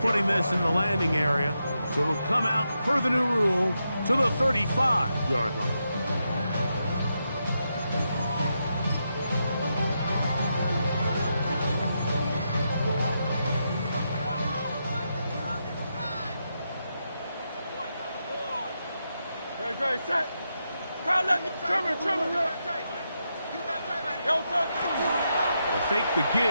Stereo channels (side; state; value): both; inverted; correlation -0.84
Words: putting this in the landing area. So it'll come out, per the new rule, to the 35-yard line. Great, set. Crowd, let me Trevor. They'll fake the